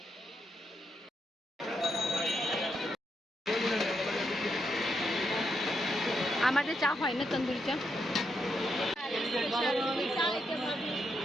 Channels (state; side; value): normal; both; correlation 0.81